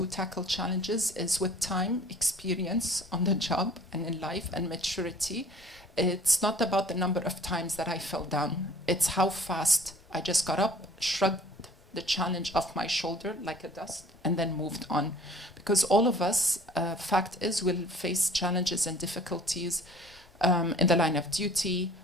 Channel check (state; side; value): normal; both; correlation 0.51